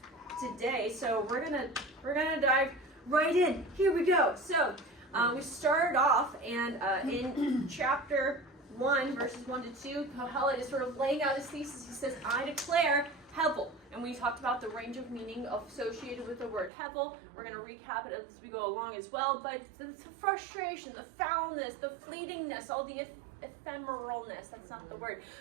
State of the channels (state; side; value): drops out; left; at 16.7 s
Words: today. So we're gonna dive right in. Here we go. So we started off, and in chapter 1, verses 1 to 2, Kohelet is sort of laying out his thesis. He says, I declare Hevel. And we talked about the range of meaning associated with the word Hevel. We're going to recap it as we go along as well. But the frustration, the foulness, the fleetingness, all the ephemeralness, that's not the word,